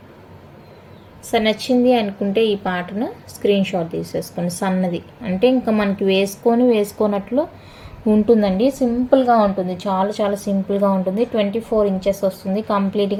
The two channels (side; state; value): both; identical; correlation 1.00